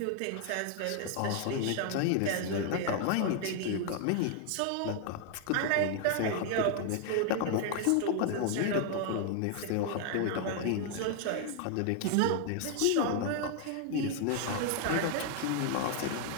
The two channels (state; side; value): different; both; correlation 0.00